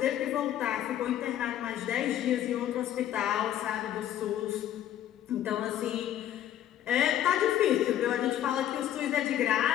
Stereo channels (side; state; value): right; quieter; 11.4 dB